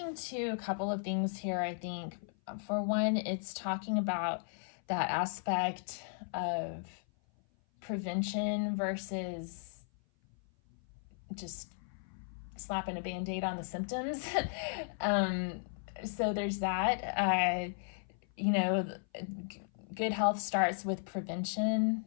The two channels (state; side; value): silent; right; 54 dB below the other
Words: to a couple of things here, I think. For one, it's talking about that aspect of prevention versus just slapping a Band-Aid on the symptoms. So there's that. Good health starts with prevention